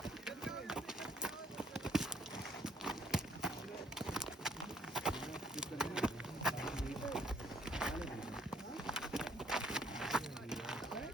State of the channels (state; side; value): normal; both; correlation 0.66